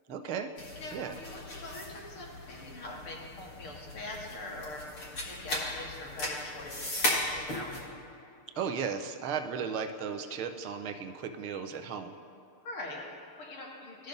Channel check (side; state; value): right; late; 6.7 ms